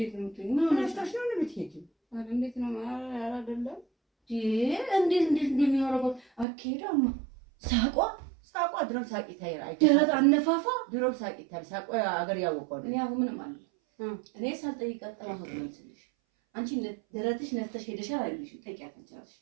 ነው የምትይዥ? ምን ሆነሽ ነው? ነው የምትሄጂው? ኧረ እንዴት ነው? ኧረ አይደለም። እንዴት እንደሚያደርገው አትሄዳማ። ሳቋ ድሮም ሳቂታ ይራይ ደረት አነፋፋ ድሮም ሳቂታ ሳቋ አገር ያወቀው እኔ አሁን ምንም አለ እኔ ሳልጠይቃት ጠራሁ ነው ትልሽ አንቺ ደረትሽ ነፍተሽ ሄደሻል አይልሽም? ጠይቂያት እንቻለሽ።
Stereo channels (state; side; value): drops out; left; at 6.5 s